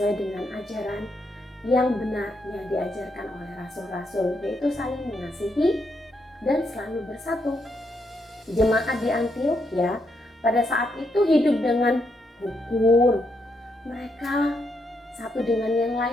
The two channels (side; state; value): both; normal; correlation 0.78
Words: dengan ajaran yang benar yang diajarkan oleh rasul-rasul, yaitu saling mengasihi dan selalu bersatu. Jemaat di Antiokhia pada saat itu hidup dengan rukun. Mereka satu dengan yang